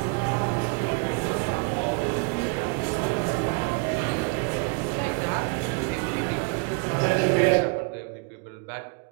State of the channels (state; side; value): quieter; left; 33.9 dB